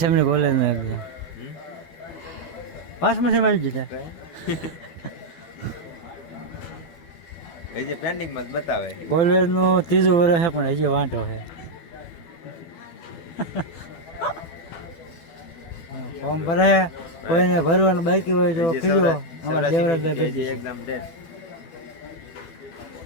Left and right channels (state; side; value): late; right; 12 ms